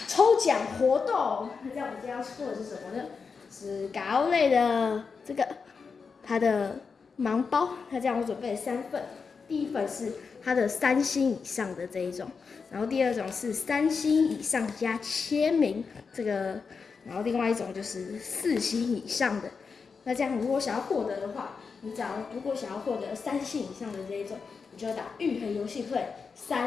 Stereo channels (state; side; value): quieter; right; 5.3 dB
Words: 抽奖活动。那这样我们今天要抽的是什么呢？是高类的这个它的盲包。那这样我准备了3份，第一份是它的3星以上的这一种。然后第2种是3星以上加签名这个，然后另外一种就是4星以上的。那这样如果想要获得的话，如果想要获得3星以上的这一种，你就要打玉衡游戏会